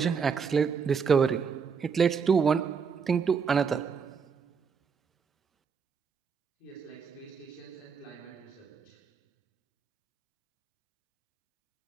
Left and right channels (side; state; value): left; quieter; 6.1 dB